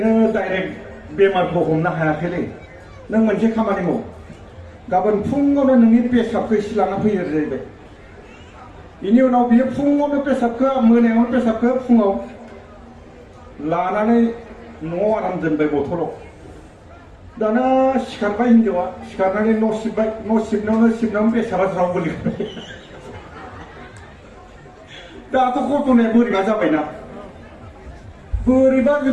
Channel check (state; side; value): identical; both; correlation 1.00